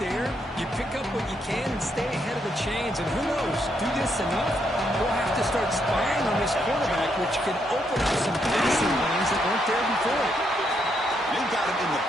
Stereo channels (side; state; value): both; normal; correlation 0.77